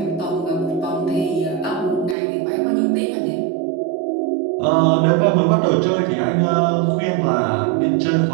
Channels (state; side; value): drops out; left; at 2.1 s